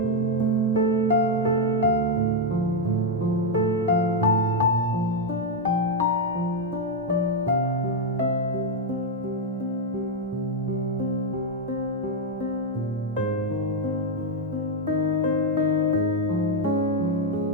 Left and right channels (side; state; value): both; normal; correlation 0.01